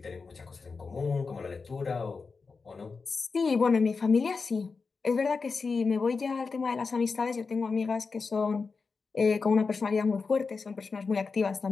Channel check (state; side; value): quieter; right; 4.6 dB